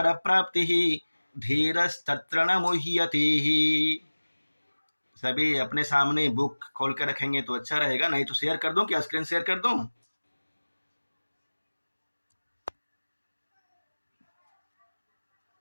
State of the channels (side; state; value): both; inverted; correlation -1.00